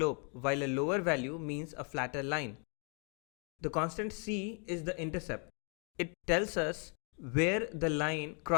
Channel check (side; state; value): right; quieter; 38.8 dB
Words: while a lower value means a flatter line. The constant c is the intercept. It tells us where the line